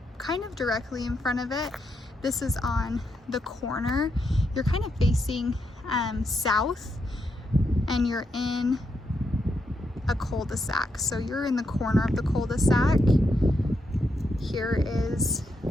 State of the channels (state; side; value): normal; both; correlation 0.81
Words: kind of directly in front of it. This is on the corner. You're kind of facing south, and you're in a cul-de-sac. So you're in the corner of the cul-de-sac. Here is